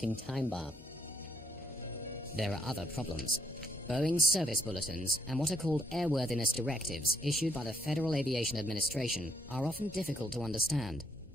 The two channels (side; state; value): left; noise; hum, 24 dB below the sound